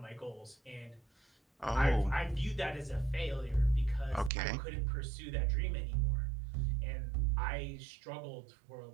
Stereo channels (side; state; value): left; drops out; at 4.3 s